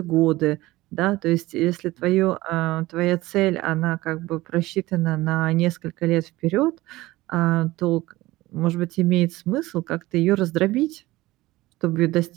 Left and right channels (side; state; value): left; quieter; 18.5 dB